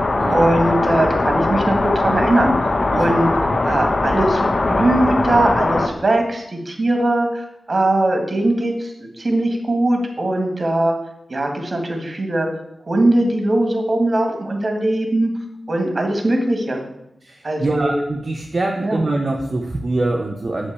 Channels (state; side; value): normal; both; correlation 0.94